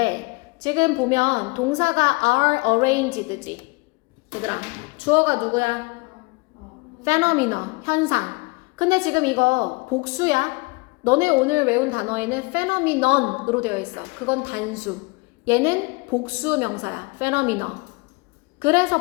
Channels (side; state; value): right; quieter; 28.2 dB